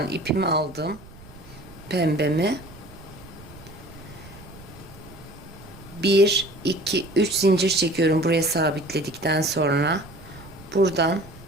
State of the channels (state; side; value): noise; right; rumble, 20 dB below the sound